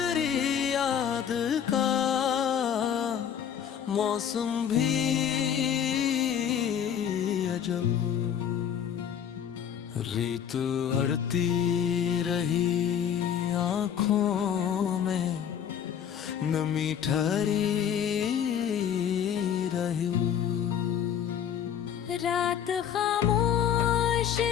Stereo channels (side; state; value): right; quieter; 8.8 dB